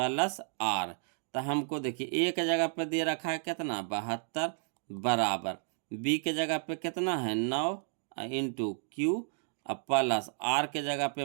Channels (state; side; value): silent; left; 56 dB below the other